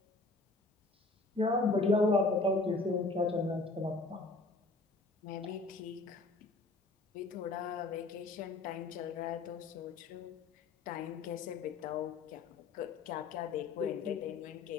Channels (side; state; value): right; quieter; 3.4 dB